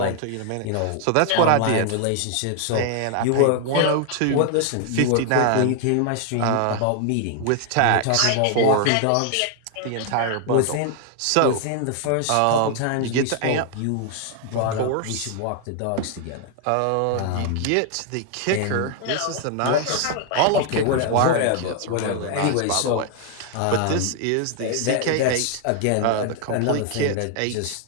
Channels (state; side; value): different; both; correlation 0.00